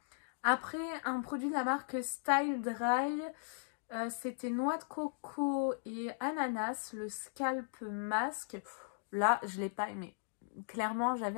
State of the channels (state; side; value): silent; right; digital silence